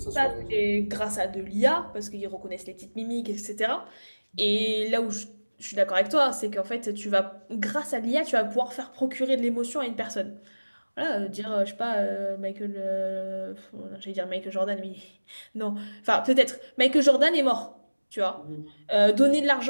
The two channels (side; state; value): both; inverted; correlation -1.00